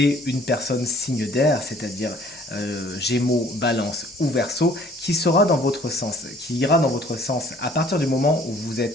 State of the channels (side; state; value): both; normal; correlation 0.56